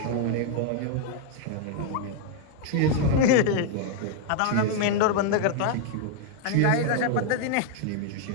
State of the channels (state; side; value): different; both; correlation 0.00